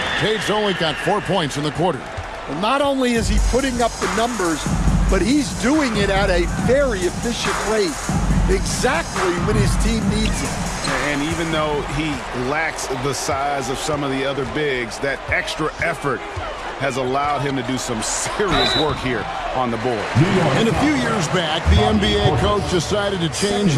Tate's only got 4 points in the quarter. Well, not only is he putting up the numbers, but he's doing it at a very efficient rate, exactly when his team needs it. And even though he lacks the size of some of the other bigs, that extra effort has allowed him to do some serious work here on the board. And a few years back, the NBA coach decided to change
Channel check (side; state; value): both; identical; correlation 1.00